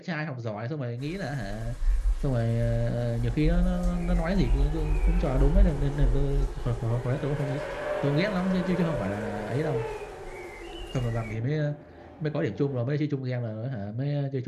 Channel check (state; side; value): identical; both; correlation 1.00